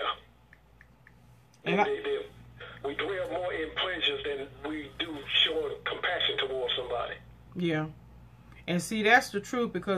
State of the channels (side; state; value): both; identical; correlation 1.00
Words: And we dwell more in pleasures than we do showing compassion towards somebody. Yeah. And see, that's the truth,